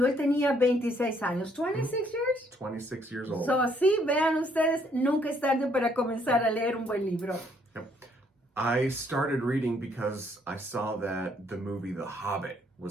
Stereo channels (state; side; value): normal; both; correlation 0.67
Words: él tenía 26 años. 26 years? 26 years old. So, sí, vean ustedes, nunca es tarde para comenzar a leer un buen libro. Yep. I started reading because I saw that the movie The Hobbit